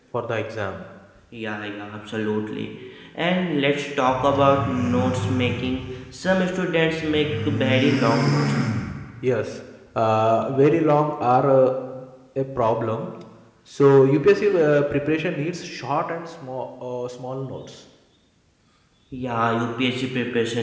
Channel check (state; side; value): identical; both; correlation 1.00